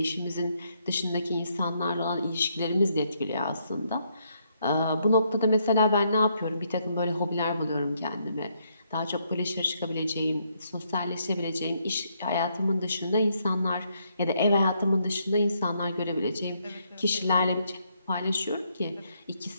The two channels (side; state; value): both; inverted; correlation -0.74